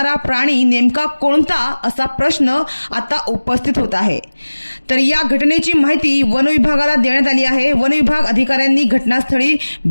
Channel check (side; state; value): both; inverted; correlation -1.00